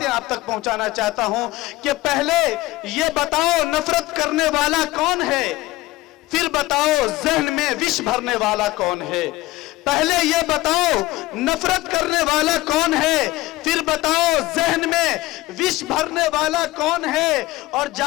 आप तक पहुंचाना चाहता हूं कि पहले ये बताओ नफरत करने वाला कौन है, फिर बताओ जहन में विष भरने वाला कौन है। पहले ये बताओ नफरत करने वाला कौन है, फिर बताओ जहन में विष भरने वाला कौन है, और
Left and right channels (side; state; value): right; quieter; 18.5 dB